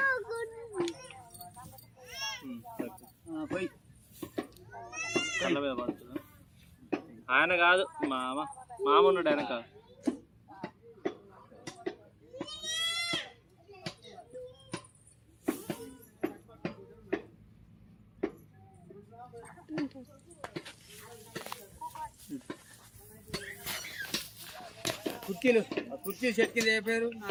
ఆయన కాదు, మామ ఉన్నాడు వెనక. కుర్చీలు సెట్ కింద ఏ పేరు?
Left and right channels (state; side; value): identical; both; correlation 1.00